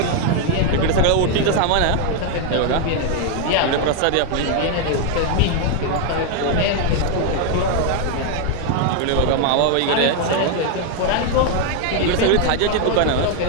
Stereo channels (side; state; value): both; different; correlation 0.01